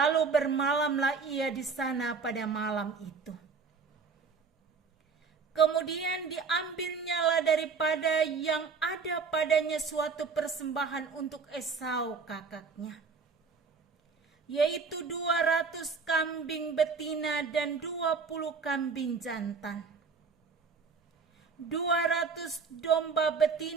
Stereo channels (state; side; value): quieter; left; 5.0 dB